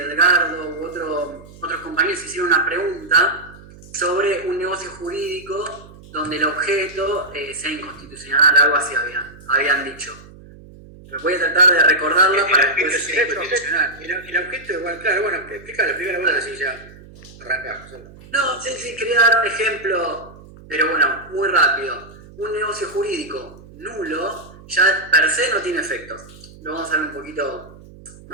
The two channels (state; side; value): noise; right; hum, 20 dB below the sound